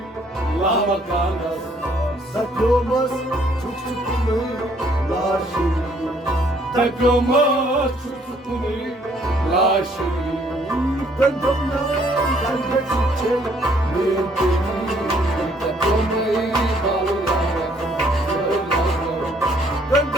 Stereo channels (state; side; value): normal; both; correlation 0.64